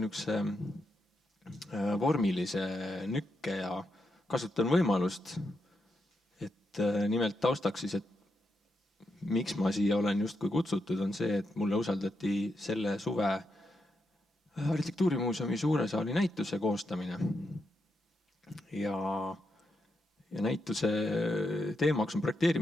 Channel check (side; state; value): both; normal; correlation 0.84